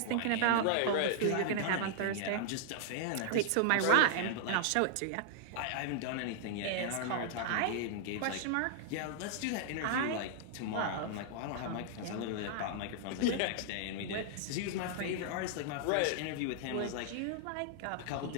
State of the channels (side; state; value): both; different; correlation -0.01